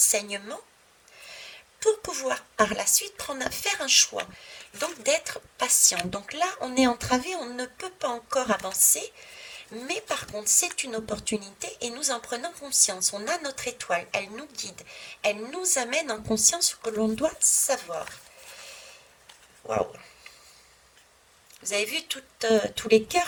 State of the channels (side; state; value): both; identical; correlation 1.00